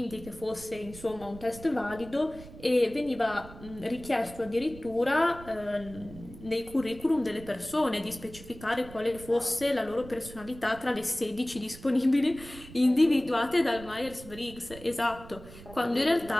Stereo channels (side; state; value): right; noise; rumble, 17 dB below the sound